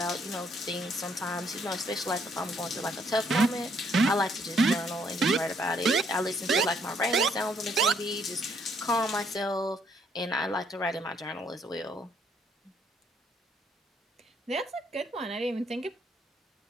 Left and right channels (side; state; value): both; normal; correlation 0.68